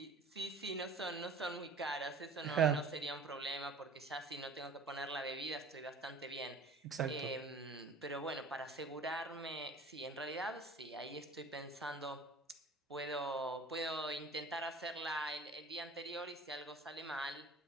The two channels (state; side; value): quieter; left; 3.1 dB